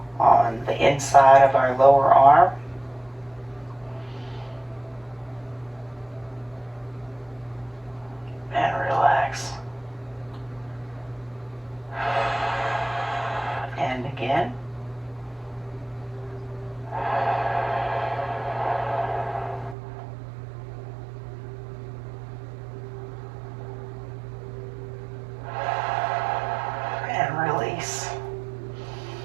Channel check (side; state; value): left; drops out; at 19.8 s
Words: on the inside of our lower arm. And relax. And again.